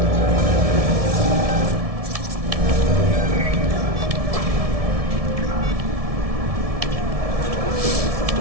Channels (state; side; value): late; left; 1.7 ms